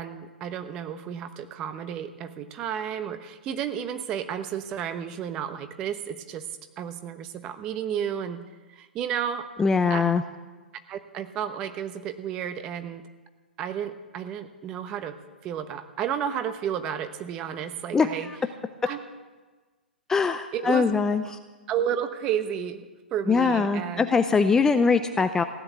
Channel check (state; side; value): normal; both; correlation 0.60